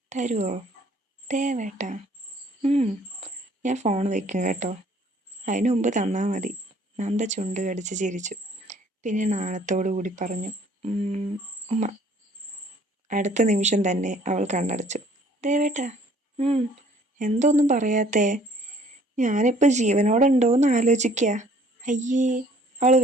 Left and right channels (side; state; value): both; normal; correlation 0.57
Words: തരുമോ? ദേവേട്ടാ, ഞാൻ ഫോൺ വയ്ക്കും കേട്ടോ. അതിനു മുമ്പ് തന്നാൽ മതി. നന്ദ ചുണ്ട് കടിച്ച് ചിരിച്ചു. പിന്നെ നാണത്തോടു കൂടി പറഞ്ഞു, ഉമ്മ. അടുത്ത നിമിഷം തന്നെ അവൾ കണ്ണടച്ചു. ദേവേട്ടാ, എന്തൊന്നും പറയാത്തേ? ഞാനിപ്പോൾ ജീവനോടുണ്ടോയെന്ന് ആലോചിക്കുക. അയ്യേ, അവൾ